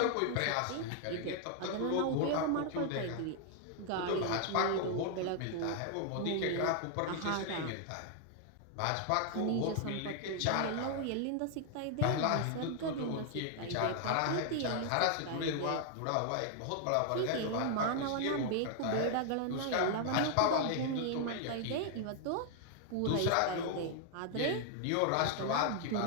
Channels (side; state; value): both; different; correlation 0.00